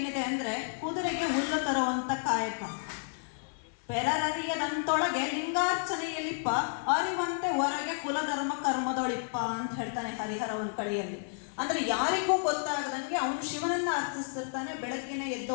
ಅಂದರೆ ಕುದುರೆಗೆ ಹುಲ್ಲು ತರುವಂಥ ಕಾಯಕ. ಪೆರರರಿಯದಂತೊಳಗೆ ಲಿಂಗಾರ್ಚನೆಯಲ್ಲಿಪ್ಪ ಅರಿವಂತೆ ಹೊರಗೆ ಕುಲಧರ್ಮ ಕರ್ಮದೊಳಿಪ್ಪ ಅಂತ ಹೇಳ್ತಾನೆ ಹರಿಹರ ಒಂದು ಕಡೆಯಲ್ಲಿ. ಅಂದರೆ ಯಾರಿಗೂ ಗೊತ್ತಾಗದಂಗೆ ಅವನು ಶಿವನನ್ನು ಅರ್ಚಿಸ್ತಿರ್ತಾನೆ. ಬೆಳಗ್ಗೆನೆ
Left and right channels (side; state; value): right; silent; 55 dB below the other